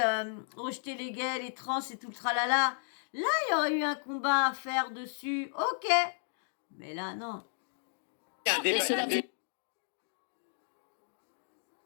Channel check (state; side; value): silent; right; digital silence